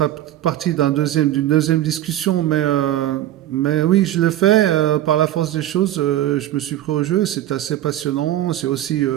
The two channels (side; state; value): left; quieter; 13.2 dB